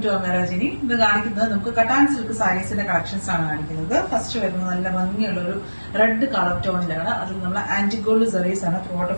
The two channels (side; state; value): both; inverted; correlation -1.00